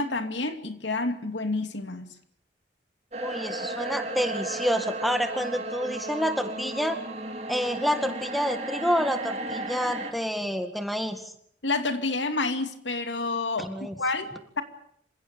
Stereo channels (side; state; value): both; normal; correlation 0.51